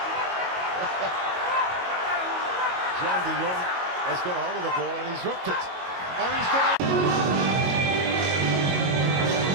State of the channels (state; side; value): late; left; 22 ms